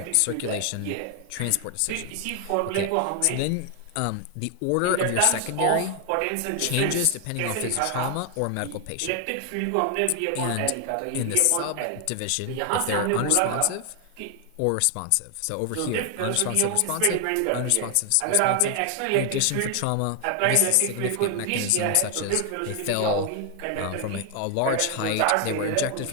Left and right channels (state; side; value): different; both; correlation 0.00